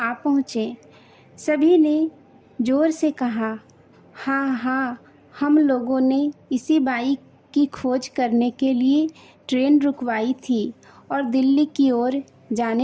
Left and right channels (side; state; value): both; identical; correlation 1.00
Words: पहुँचे। सभी ने जोर से कहा, हाँ हाँ, हम लोगों ने इसी बाई की खोज करने के लिए ट्रेन रुकवाई थी और दिल्ली की ओर